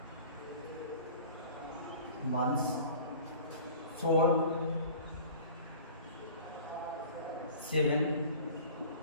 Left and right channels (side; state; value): both; inverted; correlation -0.43